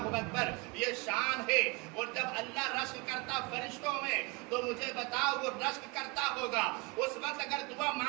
اکبر۔ یہ شان ہے۔ اور جب اللہ رشک کرتا فرشتوں میں تو مجھے بتاؤ وہ رشک کرتا ہوگا اس وقت اگر دعا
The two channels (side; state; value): left; quieter; 27.0 dB